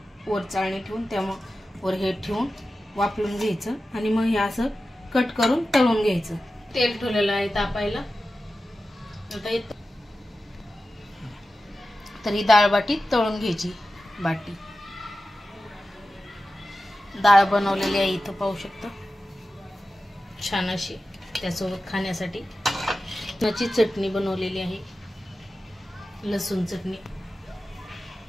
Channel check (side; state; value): both; normal; correlation 0.94